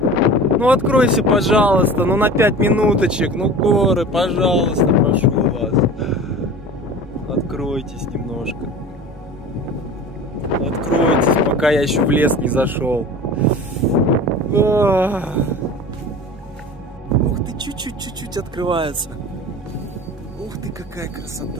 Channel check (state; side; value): normal; both; correlation 0.37